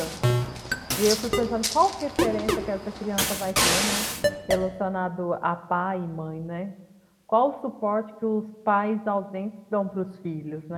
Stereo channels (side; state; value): both; identical; correlation 1.00